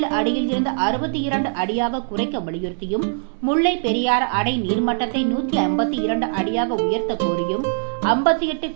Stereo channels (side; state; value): left; silent; digital silence